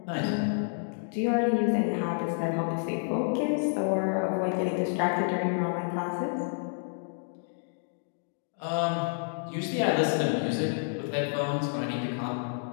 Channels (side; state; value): right; silent; digital silence